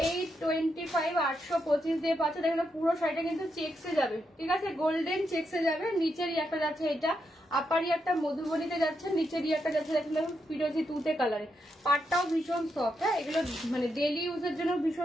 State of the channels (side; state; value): both; normal; correlation 0.82